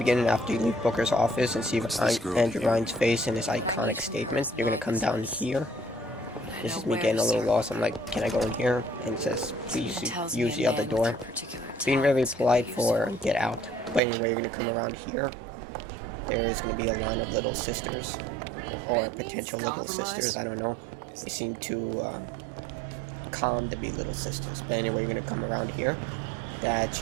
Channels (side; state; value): left; drops out; at 14.0 s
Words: after you leave Booker's office and see Andrew Ryan's face and his iconic statement. You're going to come down here. This is me getting a little lost. I'm like, can I go in here? And it says, please use the other door. Being very polite for get out. But anyway, you're going to come around here. There is going to be a line of little sisters. Or potential little sisters, I don't know. They seem too calm to be little sisters. But anyway, you're going to come around here. That's